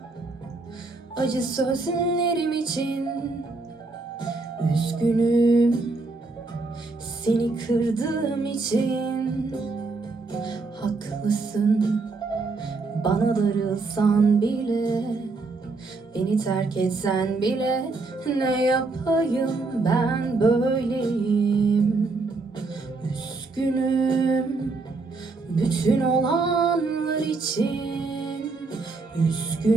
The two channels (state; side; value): quieter; left; 3.7 dB